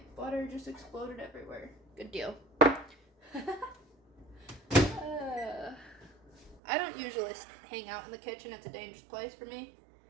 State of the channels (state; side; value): drops out; left; at 6.6 s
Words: butter just exploded everywhere. Good deal. I don't usually hang out in the kitchen. It's a dangerous place for me.